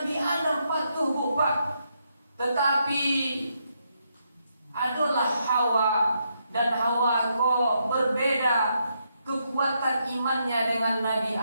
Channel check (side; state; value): both; inverted; correlation -0.79